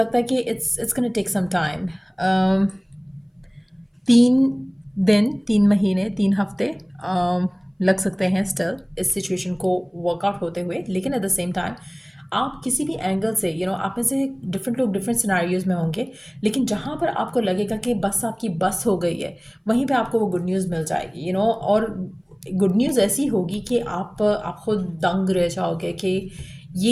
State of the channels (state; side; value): identical; both; correlation 1.00